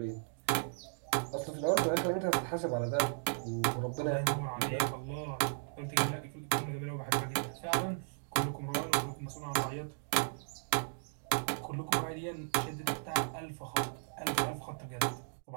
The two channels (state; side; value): silent; left; digital silence